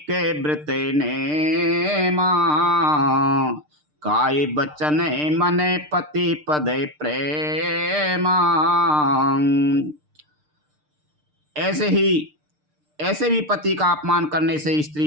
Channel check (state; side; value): late; left; 6.6 ms